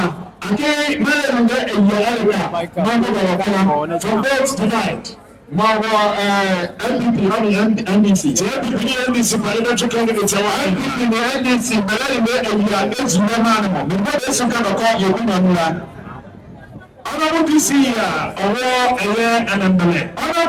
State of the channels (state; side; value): identical; both; correlation 1.00